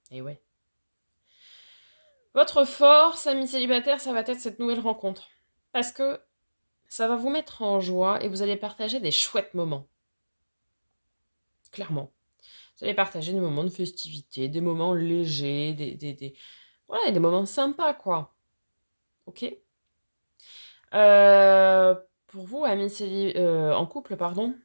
Et ouais. Votre force, amis célibataires, ça va être cette nouvelle rencontre. Parce que ça va vous mettre en joie et vous allez partager des chouettes moments. Clairement. Vous allez partager des moments de festivité, des moments légers, voilà, des moments sympas, quoi. Ok. Pour vous, amis en couple, pardon,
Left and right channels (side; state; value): both; inverted; correlation -1.00